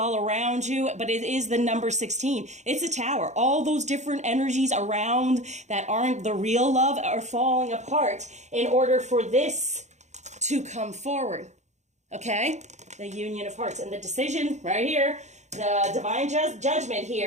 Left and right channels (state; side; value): late; left; 0.34 ms